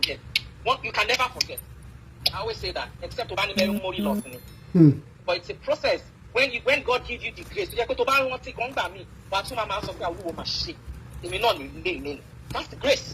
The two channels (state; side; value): identical; both; correlation 1.00